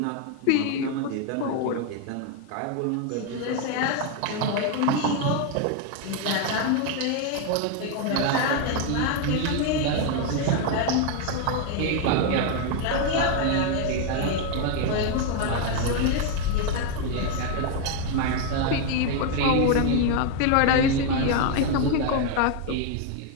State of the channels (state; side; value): different; both; correlation 0.01